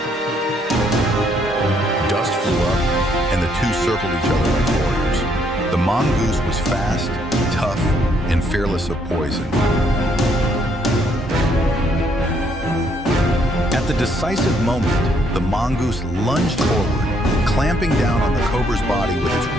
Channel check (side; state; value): both; normal; correlation 0.70